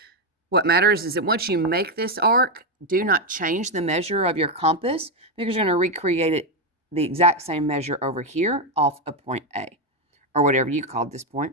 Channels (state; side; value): normal; both; correlation 0.06